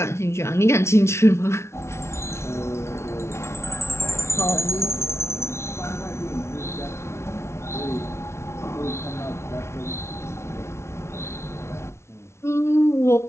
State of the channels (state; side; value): late; right; 0.13 ms